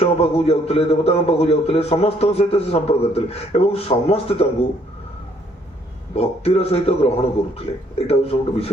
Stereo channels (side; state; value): both; normal; correlation 0.66